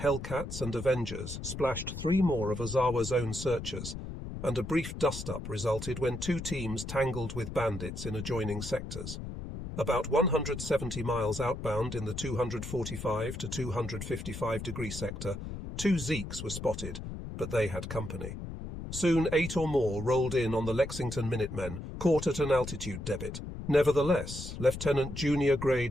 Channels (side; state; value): left; noise; rumble, 8 dB below the sound